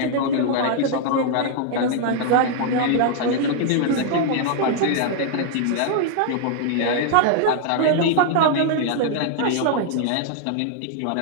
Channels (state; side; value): different; both; correlation 0.00